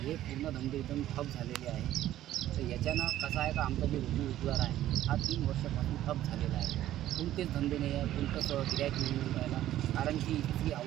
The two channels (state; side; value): quieter; left; 13.2 dB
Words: पूर्ण धंदे एकदम ठप झालेले आहे। तर याच्यानं कसं आहे का आमचा जे रोजगार आहे हा 3 वर्षापासून ठप झालेला आहे. कोणतेच धंदे नाही आहे, कोणतंच गिऱ्हाईक नाही मिळून राहिला, कारण की इथली